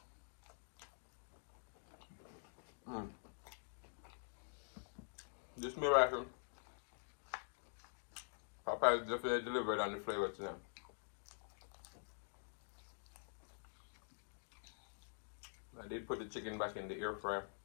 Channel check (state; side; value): silent; right; digital silence